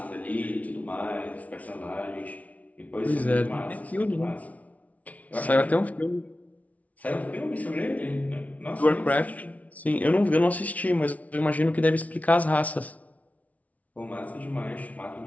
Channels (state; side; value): late; right; 0.069 ms